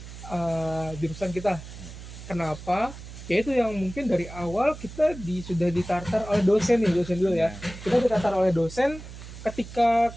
jurusan kita. Kenapa? Ya itu yang mungkin dari awal kita sudah ditartar oleh dosen nih, dosen dulu ya. Kita ditartar oleh dosen ketika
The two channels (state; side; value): noise; right; hum, 13 dB below the sound